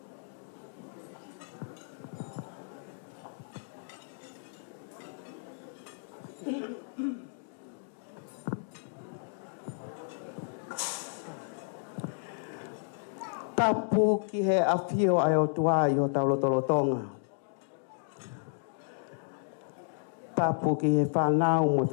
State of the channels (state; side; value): silent; right; digital silence